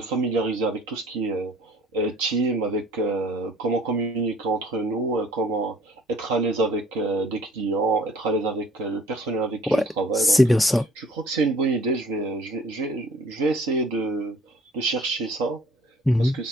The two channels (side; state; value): both; normal; correlation 0.54